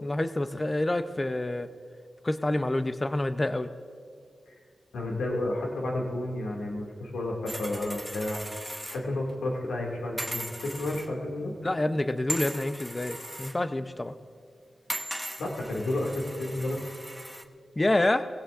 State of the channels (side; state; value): both; normal; correlation 0.96